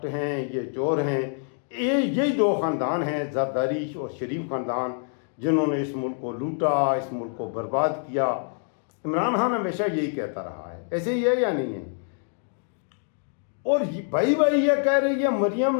ہیں، یہ چور ہیں۔ یہی دو خاندان ہیں، زرداری اور شریف خاندان، جنہوں نے اس ملک کو لوٹا، اس ملک کو برباد کیا۔ عمران خان ہمیشہ یہی کہتا رہا ہے، ایسے ہی ہے یا نہیں ہے؟ اور بھائی یہ کہہ رہی ہے مریم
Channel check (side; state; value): right; silent; 61 dB below the other